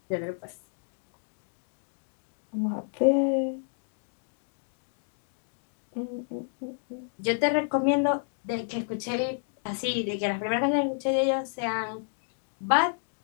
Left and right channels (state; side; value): silent; right; digital silence